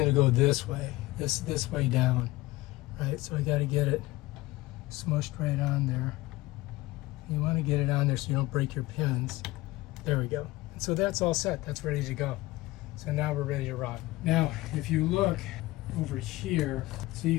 to go this way. This way down. Right, so I got to get it smushed right on there. You want to get it on there so you don't break your pins. There we go. And so that's all set. That's ready to go. So now we're ready to rock. Now, if you look over here, so you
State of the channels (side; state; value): right; quieter; 19.1 dB